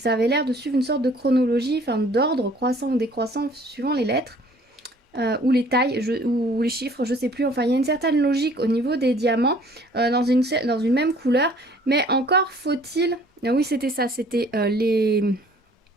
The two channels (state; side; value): normal; both; correlation 0.55